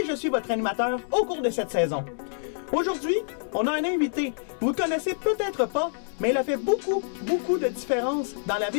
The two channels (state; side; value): silent; right; digital silence